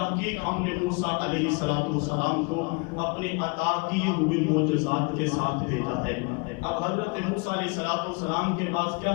ہم نے موسیٰ علیہ السلام کو اپنے عطا کیے ہوئے معجزات کے ساتھ بھیجا ہے. اب حضرت موسیٰ علیہ السلام کے پاس کیا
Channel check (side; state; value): right; quieter; 30.4 dB